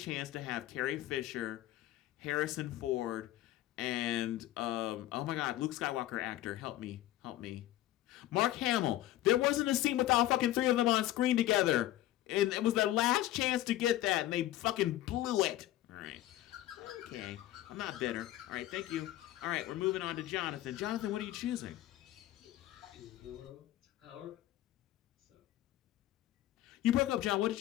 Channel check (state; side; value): quieter; right; 14.6 dB